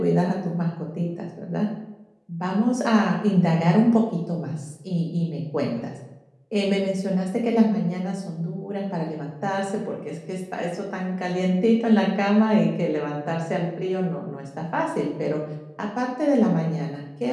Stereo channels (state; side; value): identical; both; correlation 1.00